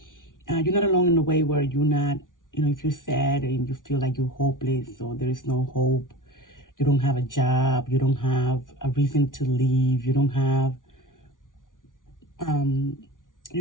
not alone in the way where you're not, if you're sad and you feel like you're hopeless or there's no hope, you don't have a job, you don't have a reason to leave, you don't have, um,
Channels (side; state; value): right; late; 0.88 ms